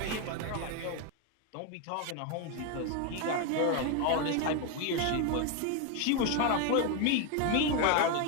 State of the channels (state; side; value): different; both; correlation 0.02